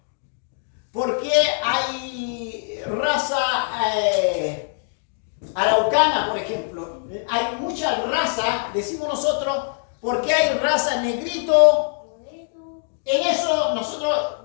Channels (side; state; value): right; silent; digital silence